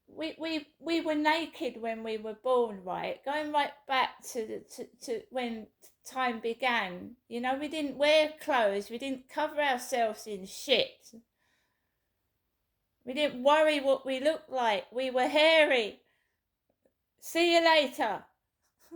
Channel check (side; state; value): both; identical; correlation 1.00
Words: we were naked when we were born, right? Going right back to when time began. You know, we didn't wear clothes. We didn't cover ourselves in shit. We didn't worry what we looked like. We were hairy. See you later.